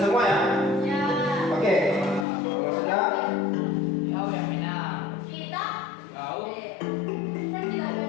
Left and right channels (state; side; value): drops out; right; at 2.2 s